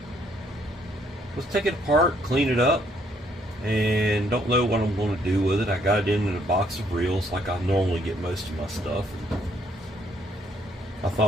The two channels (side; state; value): both; normal; correlation 0.68